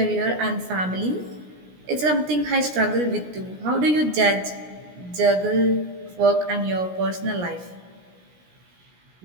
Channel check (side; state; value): left; late; 16 ms